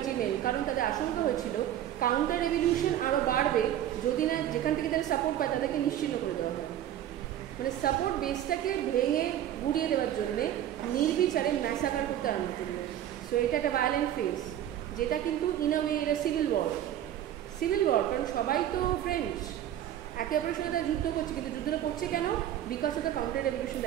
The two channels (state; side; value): quieter; left; 11.5 dB